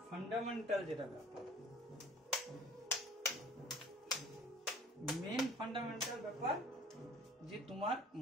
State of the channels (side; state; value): both; normal; correlation 0.49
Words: ব্যাপার, যে তোমার